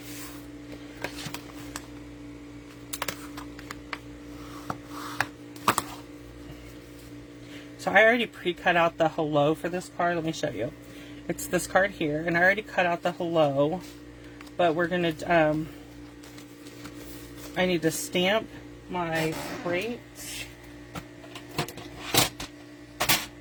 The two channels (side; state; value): both; identical; correlation 1.00